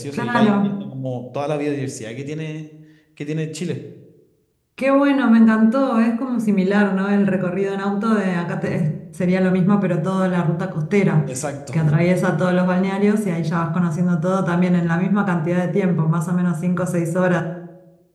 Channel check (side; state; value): both; identical; correlation 1.00